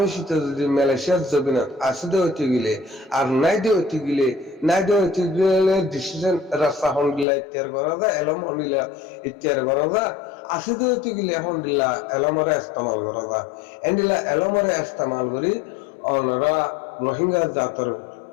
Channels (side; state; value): right; drops out; at 7.2 s